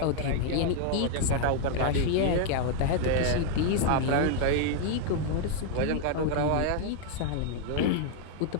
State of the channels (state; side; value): different; both; correlation 0.00